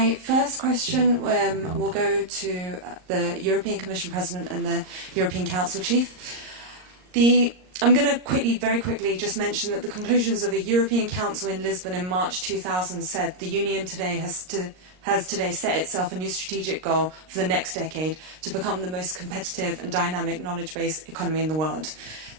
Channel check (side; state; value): left; late; 38 ms